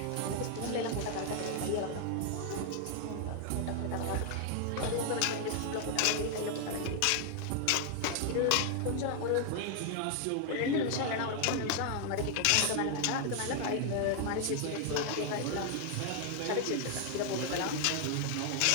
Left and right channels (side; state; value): both; different; correlation 0.00